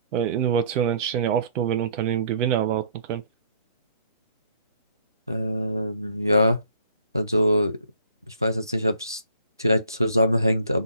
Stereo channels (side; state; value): both; inverted; correlation -0.59